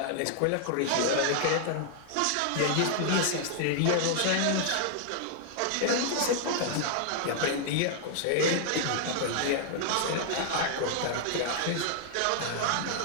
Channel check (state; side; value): different; both; correlation 0.00